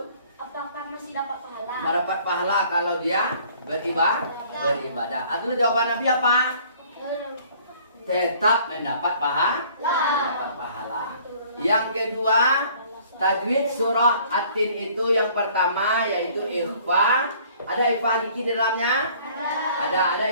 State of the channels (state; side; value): inverted; both; correlation -0.55